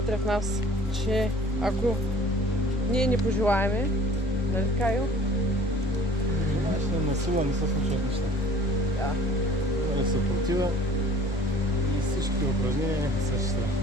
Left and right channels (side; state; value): both; normal; correlation 0.51